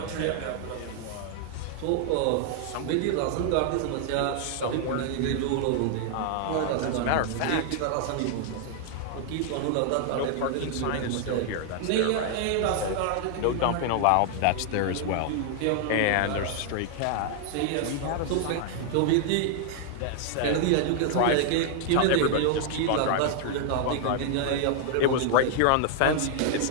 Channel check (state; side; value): different; both; correlation 0.00